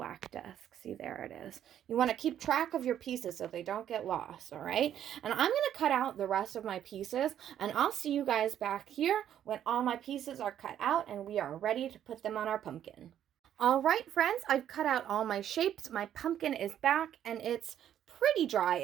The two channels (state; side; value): quieter; left; 10.4 dB